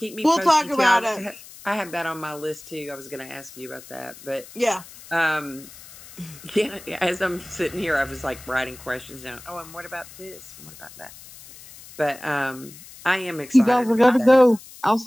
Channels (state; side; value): noise; left; hiss, 18 dB below the sound